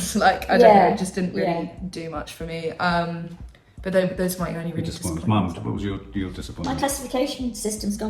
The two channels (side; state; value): both; identical; correlation 1.00